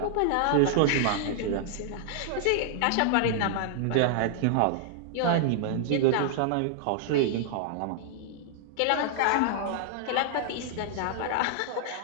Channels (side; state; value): both; different; correlation -0.01